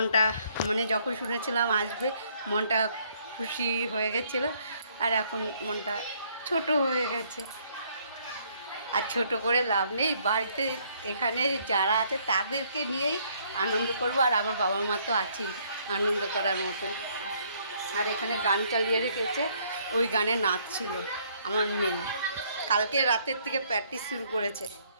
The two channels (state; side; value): inverted; both; correlation -0.66